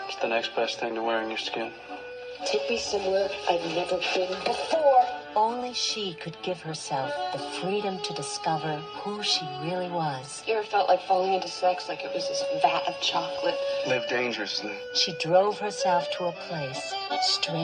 It's the next best thing to wearing your skin. Take me somewhere I've never been before. Only she could give herself the freedom to discover who she really was. You ever felt like falling into sex like it was this vat of chocolate? Live dangerously. She drove herself to a place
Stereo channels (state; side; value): identical; both; correlation 1.00